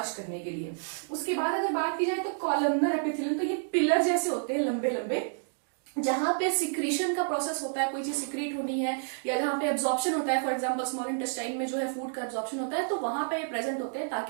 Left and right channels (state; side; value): silent; left; digital silence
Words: करने के लिए। उसके बाद अगर बात की जाए तो कॉलमनर एपिथेलियल, तो ये पिलर जैसे होते हैं लंबे लंबे, जहां पे सिक्रीशन का प्रोसेस होता है, कोई चीज सिक्रीट होनी है या जहां पे एब्जॉर्प्शन होता है, फॉर एग्जांपल स्मॉल इंटेस्टाइन में जो है फूड का एब्जॉर्प्शन होता है, तो वहां पे ये प्रेजेंट होते हैं